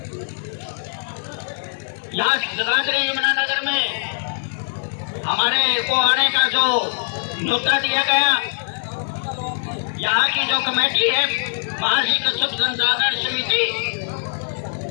यहाँ जगाधरी यमुनानगर में हमारे को आने का जो न्योता दिया गया, यहाँ की जो कमेटी है महर्षि कश्यप संसाधन समिति,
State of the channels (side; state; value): right; silent; digital silence